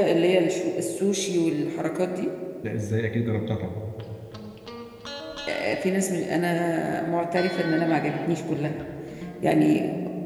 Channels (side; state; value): both; identical; correlation 1.00